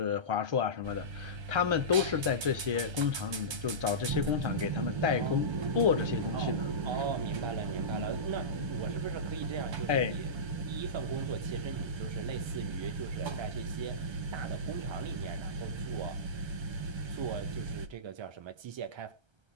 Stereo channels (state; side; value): late; left; 1.3 ms